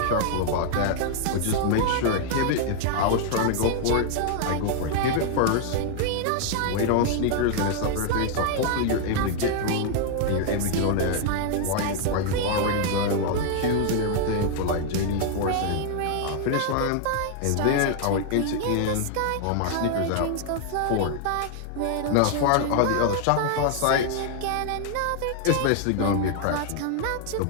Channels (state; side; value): different; both; correlation 0.00